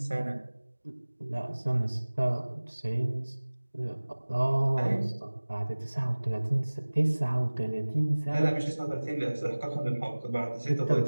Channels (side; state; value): both; inverted; correlation -1.00